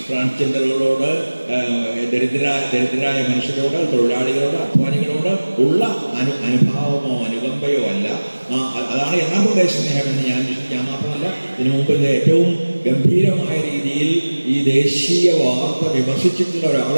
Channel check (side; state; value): both; inverted; correlation -1.00